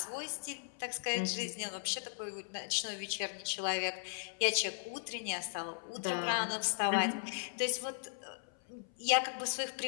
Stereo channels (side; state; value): right; silent; 53 dB below the other